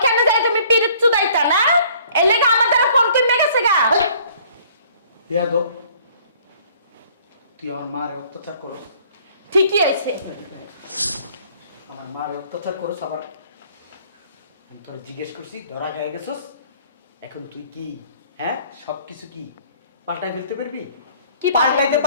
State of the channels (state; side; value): inverted; both; correlation -0.57